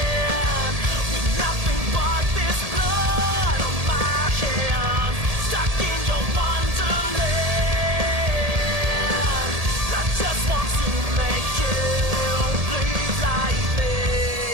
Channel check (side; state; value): left; late; 1.7 ms